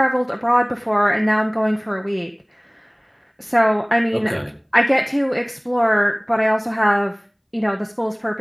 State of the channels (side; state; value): both; identical; correlation 1.00